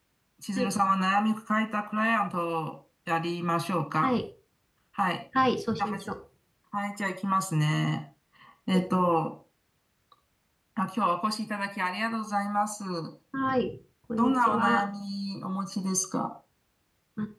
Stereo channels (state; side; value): identical; both; correlation 1.00